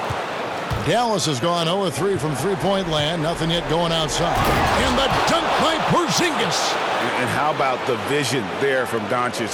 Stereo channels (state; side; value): identical; both; correlation 1.00